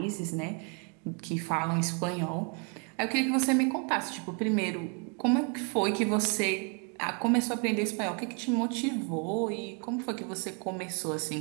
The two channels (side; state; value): left; quieter; 36.5 dB